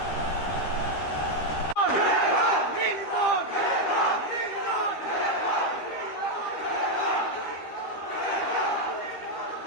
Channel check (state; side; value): late; right; 13 ms